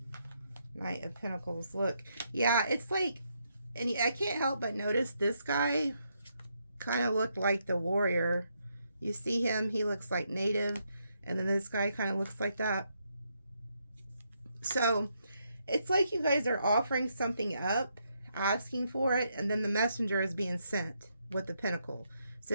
Knight of Pentacles. Look, yeah, it's like, and I can't help but notice this guy kind of looked like the warrior. You see him, he looks like native, and then this guy kind of looks like that. So it's like you guys are offering something up, asking for it, and then the messenger is being sent with the pentacle. So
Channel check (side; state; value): both; inverted; correlation -0.78